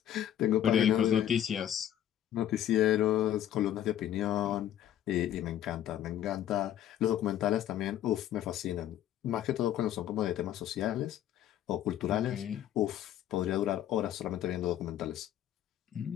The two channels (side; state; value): right; quieter; 11.3 dB